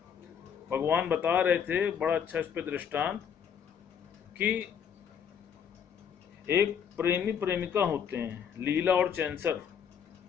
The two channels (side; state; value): right; quieter; 7.8 dB